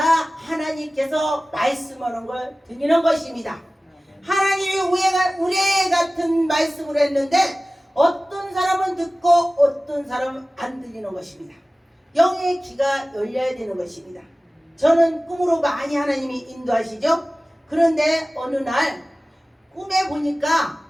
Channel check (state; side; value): normal; both; correlation 0.97